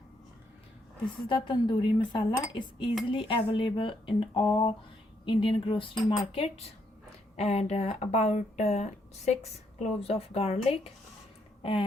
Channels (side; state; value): both; normal; correlation 0.75